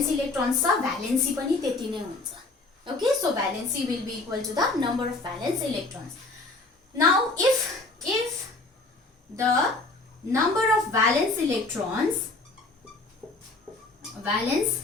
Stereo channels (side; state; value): right; quieter; 3.2 dB